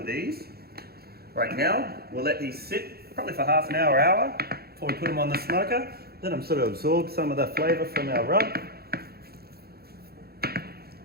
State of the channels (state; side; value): late; left; 0.46 ms